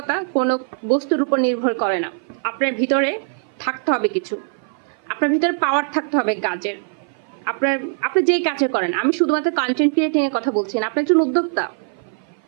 কোনো বস্তুর উপর নির্ভর করে না। আপনার ভিতরে থাকতে হবে কিছু, আপনার ভিতরে পাওয়ার থাকতে হবে কাজের। আপনি যেই কাজে করেন, আমি শুধুমাত্র কন্টেন্ট ক্রিয়েটিং এর কথা বলছি না, আপনি একজন উদ্যোক্তা,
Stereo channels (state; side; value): silent; left; 57 dB below the other